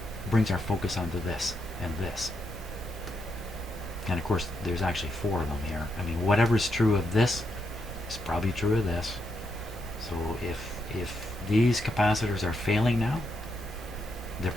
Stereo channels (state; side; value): normal; both; correlation 0.81